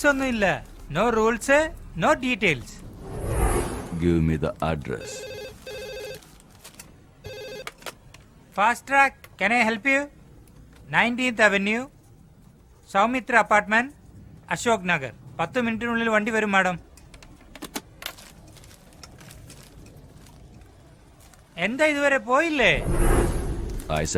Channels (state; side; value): identical; both; correlation 1.00